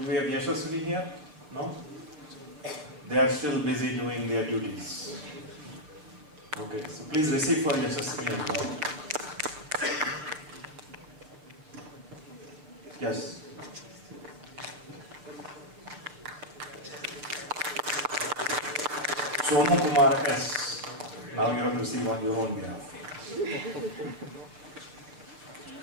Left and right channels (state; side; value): late; left; 6.6 ms